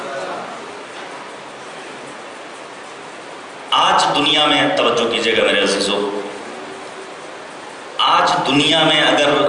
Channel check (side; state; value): both; identical; correlation 1.00